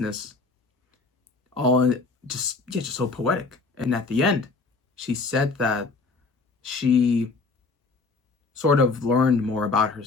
all just so poetic. And at the end, she said that she sort of learned more about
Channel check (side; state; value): right; quieter; 4.0 dB